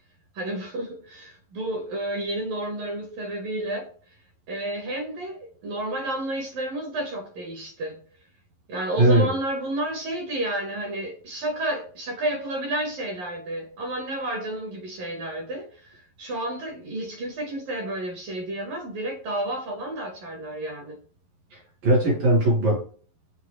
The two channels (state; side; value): late; left; 11 ms